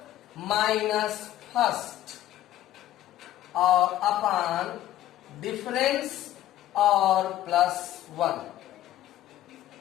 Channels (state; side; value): quieter; right; 13.3 dB